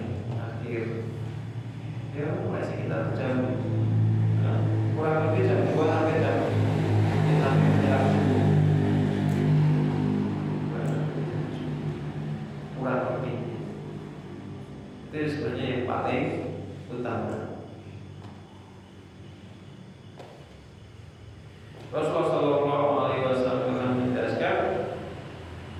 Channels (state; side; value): identical; both; correlation 1.00